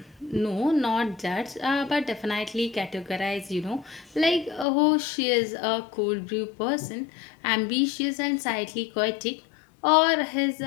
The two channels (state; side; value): drops out; right; at 4.7 s